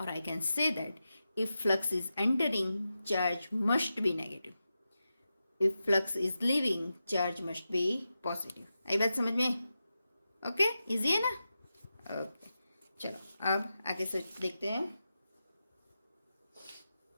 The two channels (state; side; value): inverted; both; correlation -0.91